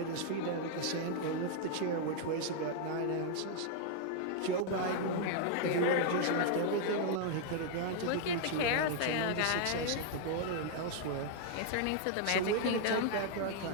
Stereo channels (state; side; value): different; both; correlation 0.00